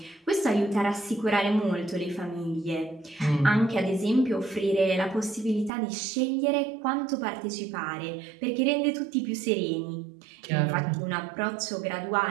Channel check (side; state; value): left; drops out; at 5.7 s